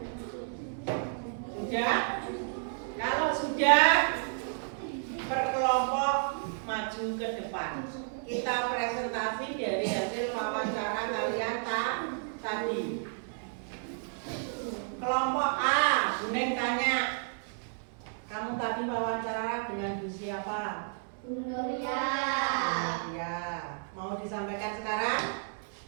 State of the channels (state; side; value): silent; left; digital silence